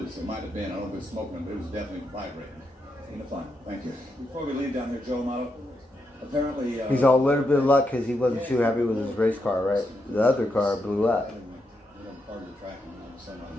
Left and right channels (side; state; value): both; normal; correlation 0.83